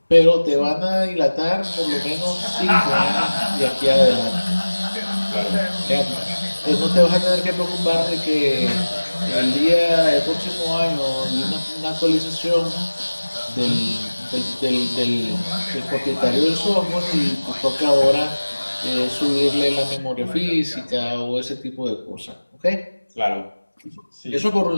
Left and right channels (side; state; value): both; inverted; correlation -1.00